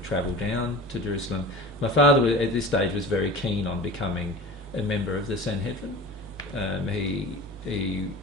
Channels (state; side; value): normal; both; correlation 0.36